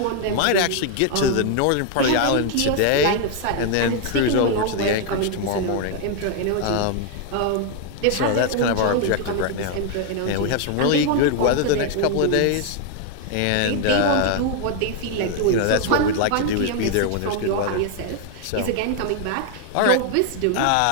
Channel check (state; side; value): different; both; correlation 0.00